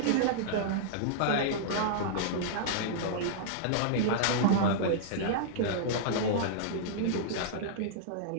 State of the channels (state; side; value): different; both; correlation -0.02